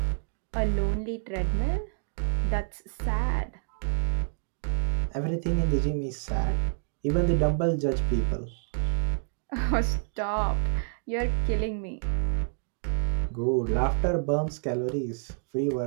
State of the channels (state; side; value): silent; left; 57 dB below the other